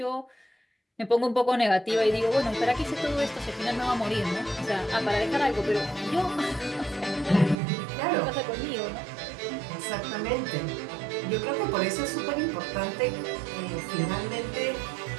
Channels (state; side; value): drops out; left; at 7.6 s